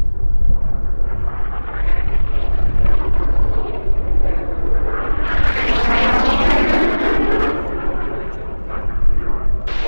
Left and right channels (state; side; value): inverted; both; correlation -1.00